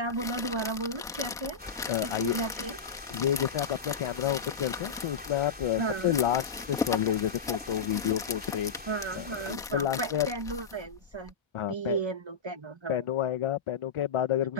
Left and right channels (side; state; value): right; quieter; 5.7 dB